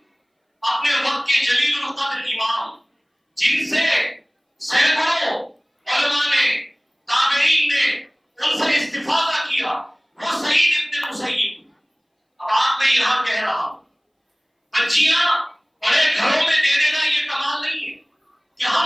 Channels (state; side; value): identical; both; correlation 1.00